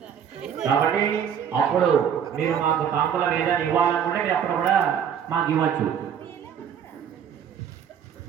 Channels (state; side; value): quieter; left; 8.4 dB